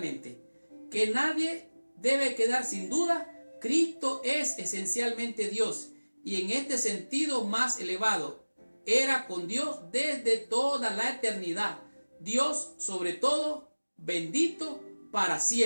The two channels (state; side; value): inverted; both; correlation -1.00